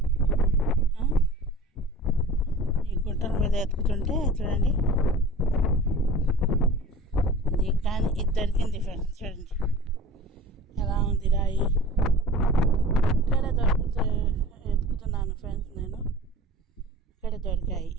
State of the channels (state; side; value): normal; both; correlation 0.41